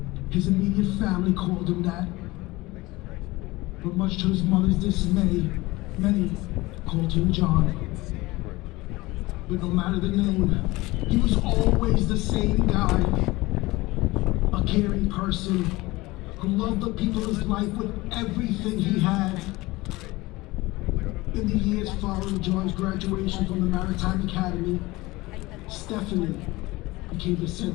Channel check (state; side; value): quieter; right; 20.7 dB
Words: His immediate family called him that. But much to his mother's dismay, many called him John. But no matter the name, he was always the same guy. caring person who loved the people of his life with everything he had. In the years following John's graduation from the Maritime Academy, Stephanie became the